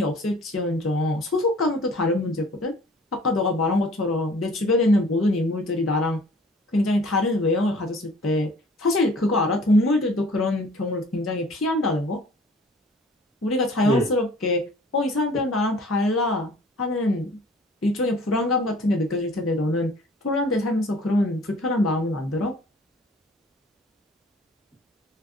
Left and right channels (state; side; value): normal; both; correlation 0.51